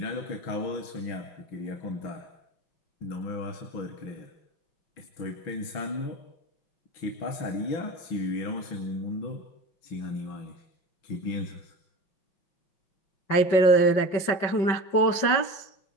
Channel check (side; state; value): right; late; 5.3 ms